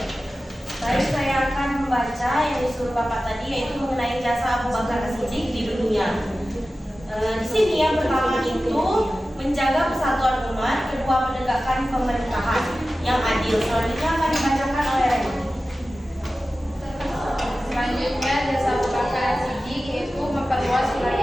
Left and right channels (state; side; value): normal; both; correlation 0.95